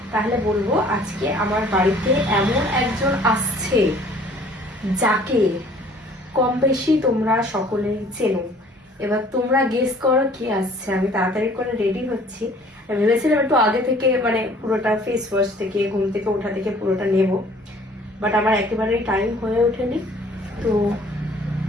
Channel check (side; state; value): both; normal; correlation 0.54